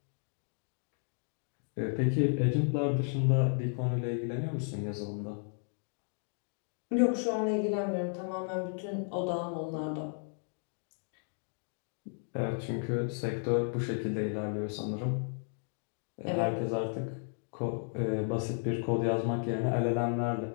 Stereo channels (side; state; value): right; silent; 55 dB below the other